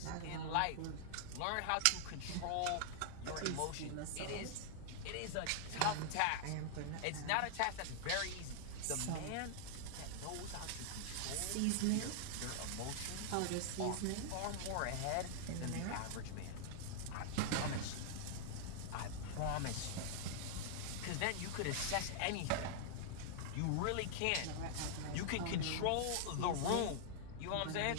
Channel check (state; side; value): different; both; correlation -0.01